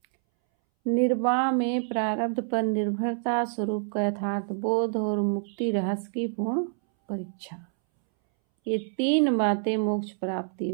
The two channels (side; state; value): left; silent; 60 dB below the other